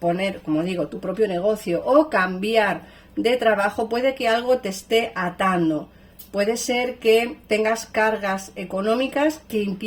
como digo, tu propio negocio o cambiar de trabajo, puede que algo te esté atando. Puede ser que tengas cargas económicas que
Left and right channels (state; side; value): identical; both; correlation 1.00